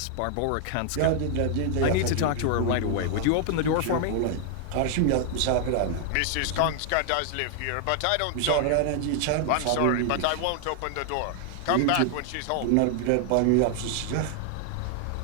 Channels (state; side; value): different; both; correlation 0.00